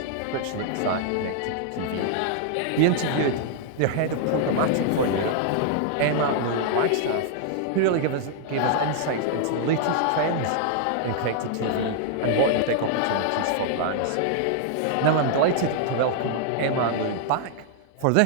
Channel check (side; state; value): both; different; correlation -0.01